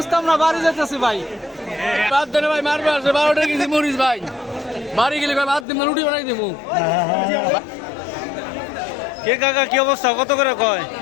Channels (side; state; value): right; drops out; at 5.7 s